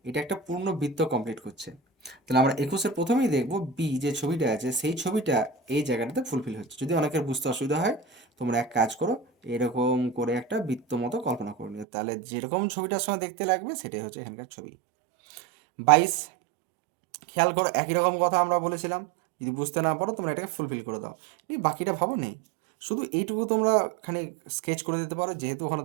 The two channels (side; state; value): left; drops out; at 11.9 s